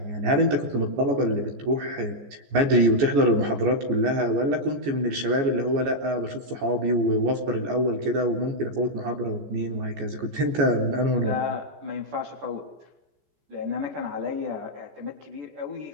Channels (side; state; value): left; late; 14 ms